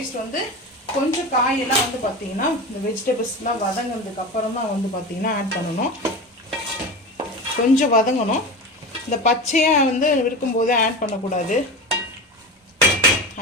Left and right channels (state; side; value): normal; both; correlation 0.27